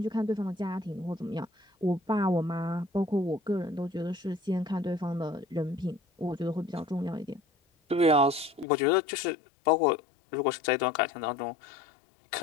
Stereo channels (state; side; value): drops out; right; at 8.7 s